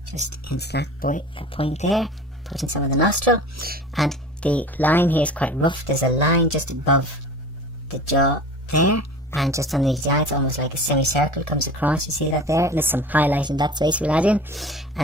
just into that point there, putting some of the nostril, and the line here is quite rough. There's a line just above the jaw there, and just underneath the eye, it's almost like a semicircle comes across. You see that there? And there's some highlight in that space we'll add in,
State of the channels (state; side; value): normal; both; correlation 0.39